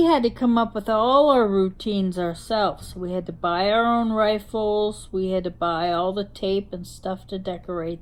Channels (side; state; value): both; identical; correlation 1.00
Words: had to come up with all our routines ourselves. We had to buy our own rifles, we had to buy all the tape and stuff to